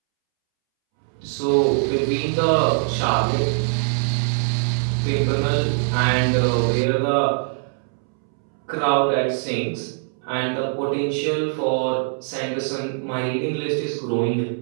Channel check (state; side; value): silent; left; 64 dB below the other